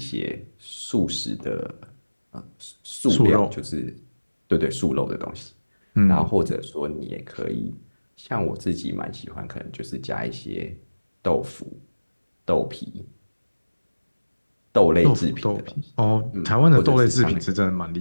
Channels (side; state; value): both; inverted; correlation -1.00